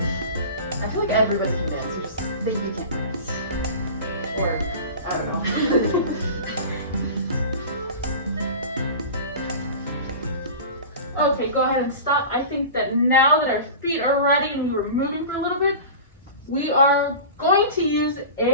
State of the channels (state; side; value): inverted; both; correlation -0.34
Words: I feel like everybody can dance, you just think they can't dance. Or, I don't know. Okay, go ahead and stop. I think that now that our feet are ready and we were moving for a little bit, we are going to use